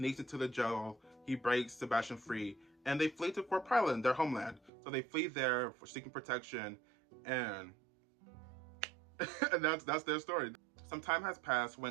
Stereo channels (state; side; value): drops out; left; at 4.7 s